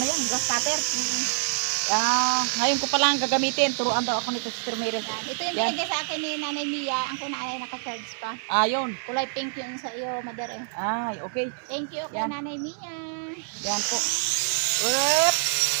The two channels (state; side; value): silent; left; 61 dB below the other